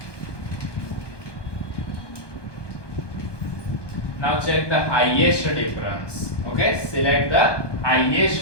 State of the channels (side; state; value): right; late; 1.2 ms